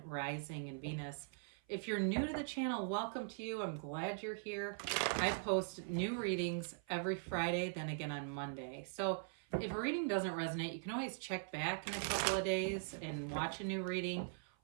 Rising, and Venus. If you're new to the channel, welcome to you. I'm glad you're here. I post new readings every Friday, then again on Monday. So if a reading doesn't resonate, you can always check back in a couple of days and watch a new reading,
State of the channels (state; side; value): silent; left; 50 dB below the other